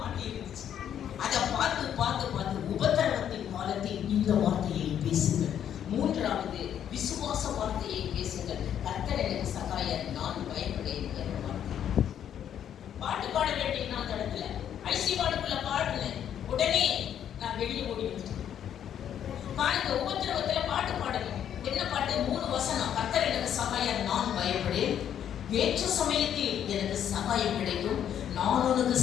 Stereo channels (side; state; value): right; quieter; 9.6 dB